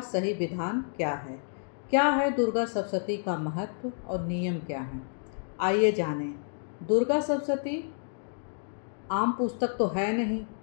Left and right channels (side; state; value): right; silent; digital silence